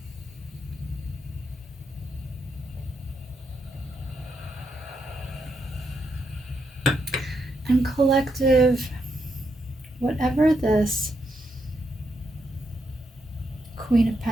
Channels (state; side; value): normal; both; correlation 0.80